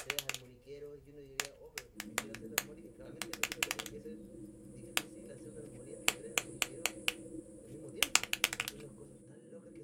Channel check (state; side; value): identical; both; correlation 1.00